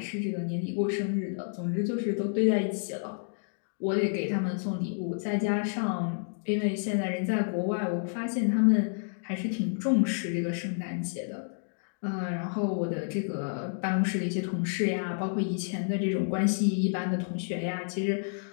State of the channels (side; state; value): right; silent; digital silence